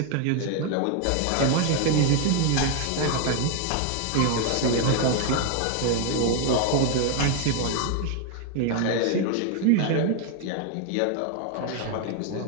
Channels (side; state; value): both; different; correlation 0.00